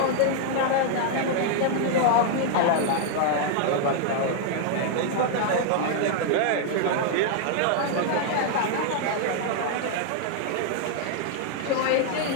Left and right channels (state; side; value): different; both; correlation 0.00